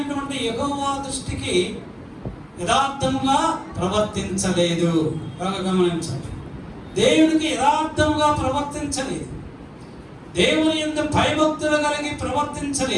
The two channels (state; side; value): identical; both; correlation 1.00